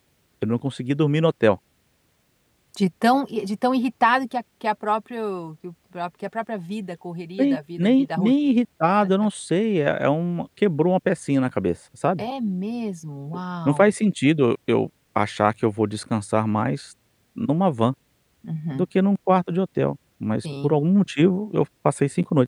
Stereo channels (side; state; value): both; identical; correlation 1.00